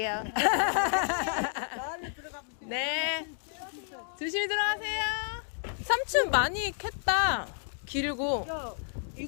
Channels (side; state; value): right; silent; 57 dB below the other